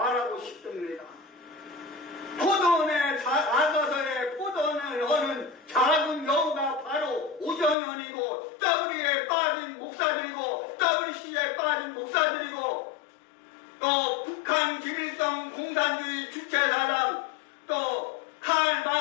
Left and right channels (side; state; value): right; drops out; at 7.8 s